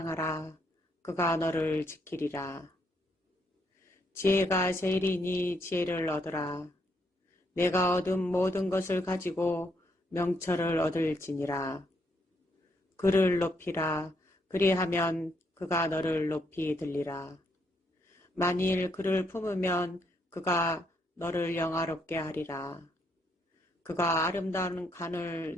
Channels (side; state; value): both; normal; correlation 0.74